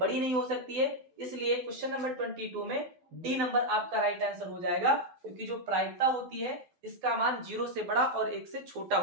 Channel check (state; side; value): late; left; 12 ms